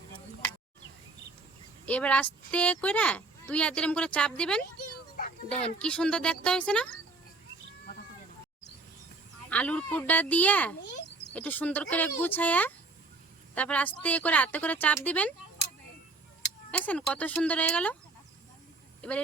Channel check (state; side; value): quieter; left; 3.5 dB